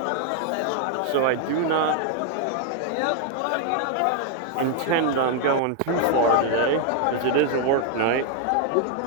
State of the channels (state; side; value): different; both; correlation 0.00